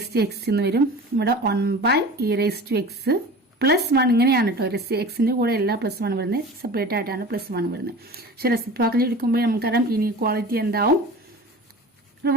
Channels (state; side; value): normal; both; correlation 0.37